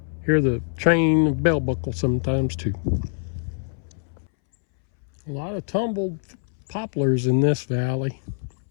Hear the train bell buckle sometimes too. A lot of tumbled poplars in this valley.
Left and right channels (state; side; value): silent; right; 62 dB below the other